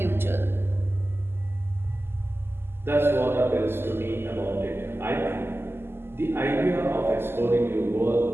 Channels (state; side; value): late; left; 0.11 ms